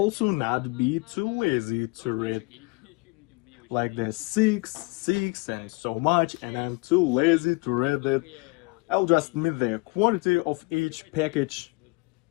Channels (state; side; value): quieter; right; 28.5 dB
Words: not be too lazy to read like the 6, 6 and so much, and I'm too lazy to read it. I'll just meet the quantity of each package.